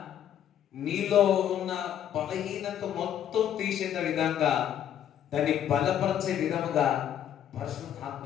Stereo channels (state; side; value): quieter; right; 10.1 dB